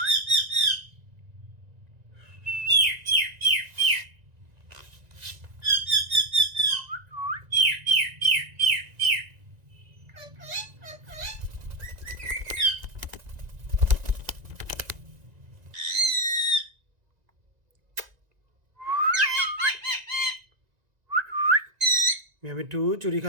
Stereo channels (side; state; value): left; late; 1.9 ms